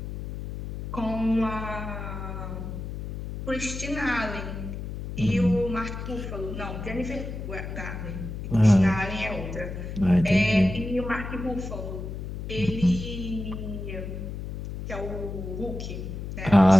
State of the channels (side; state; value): left; noise; hum, 7 dB below the sound